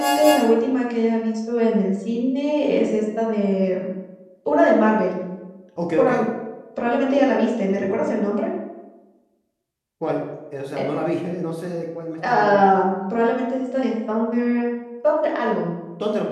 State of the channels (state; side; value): identical; both; correlation 1.00